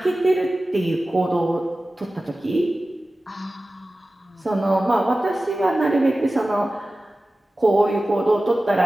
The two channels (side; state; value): both; normal; correlation 0.96